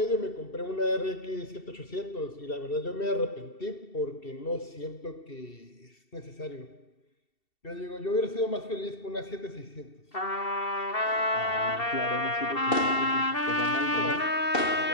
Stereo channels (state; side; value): late; right; 2.7 ms